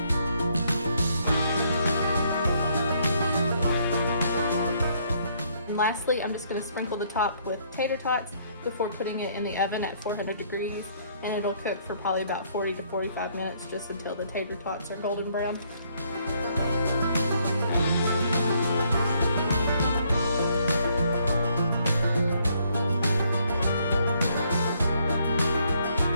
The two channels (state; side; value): inverted; both; correlation -0.68